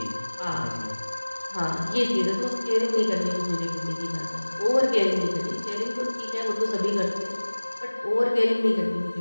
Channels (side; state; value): both; inverted; correlation -1.00